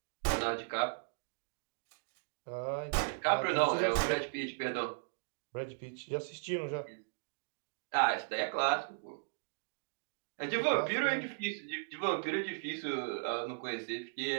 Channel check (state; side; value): silent; left; digital silence